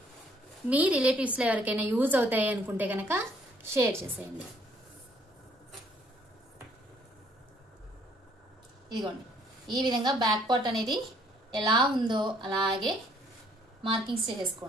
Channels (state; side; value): normal; both; correlation 0.63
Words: మీ రిలేటివ్స్లో ఎవరికైనా యూజ్ అవుతాయి అనుకుంటే కనుక షేర్ చేసేయండి. ఇదిగోండి ఈ విధంగా బ్యాక్ పార్ట్ అనేది ఎలా ఉందో అలాగే మార్కింగ్స్